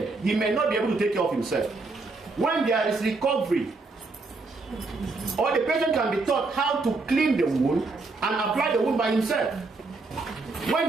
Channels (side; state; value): left; quieter; 3.7 dB